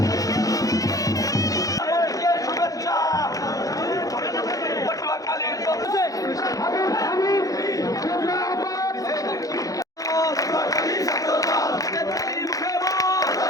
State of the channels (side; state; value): right; late; 0.17 ms